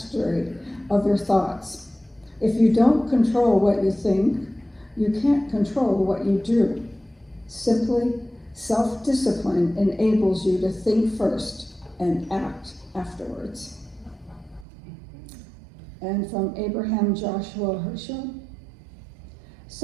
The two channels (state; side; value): drops out; left; at 14.7 s